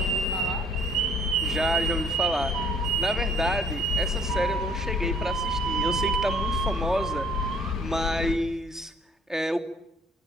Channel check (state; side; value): normal; both; correlation 0.59